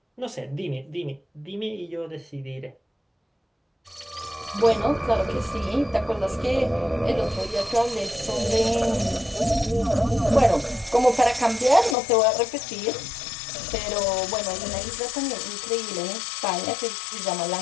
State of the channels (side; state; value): right; drops out; at 12.0 s